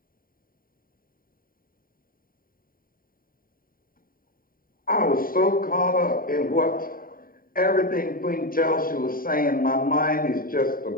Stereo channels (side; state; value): right; late; 0.41 ms